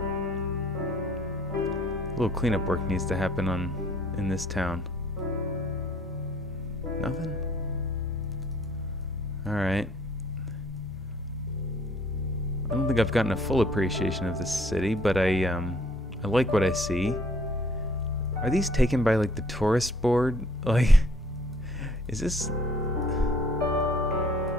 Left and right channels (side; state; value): both; normal; correlation 0.59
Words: a little cleanup work needs to happen in this town. Nothing? Alright. I don't think I've gotten a full appreciation of this city, but I like what I see. Are these taken by like the tourist board? Like, is this